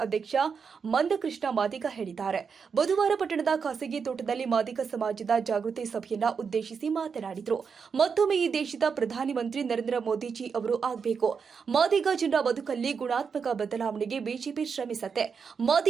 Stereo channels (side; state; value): left; quieter; 6.0 dB